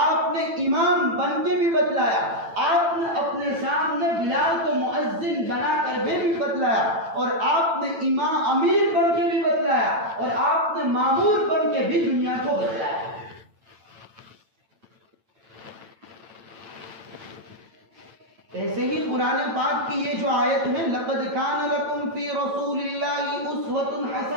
نے امام بن کے بھی بتلایا، آپ نے اپنے سامنے بلال کو مؤذن بنا کر بھی بتلایا، اور آپ نے امام امیر بن کے بھی بتلایا، اور آپ نے مامور بن کے بھی دنیا کو بتلایا۔ ایسے ہی قرآن پاک کی یہ جو آیت ہے لَقَدْ كَانَ لَكُمْ فِي رَسُولِ اللَّهِ أُسْوَةٌ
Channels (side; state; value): left; late; 8.9 ms